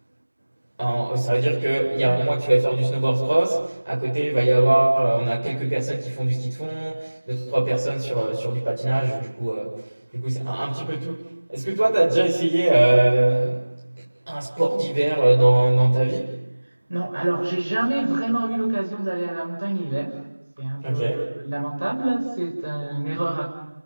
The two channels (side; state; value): both; inverted; correlation -1.00